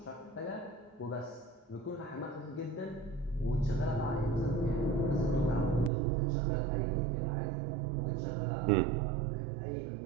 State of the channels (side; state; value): left; drops out; at 5.9 s